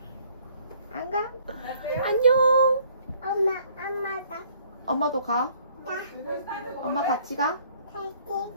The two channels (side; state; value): both; inverted; correlation -0.61